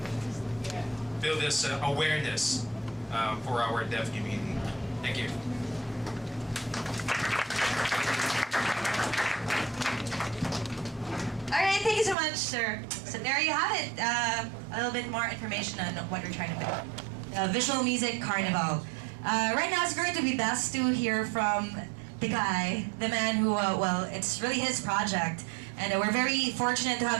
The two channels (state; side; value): drops out; left; at 12.2 s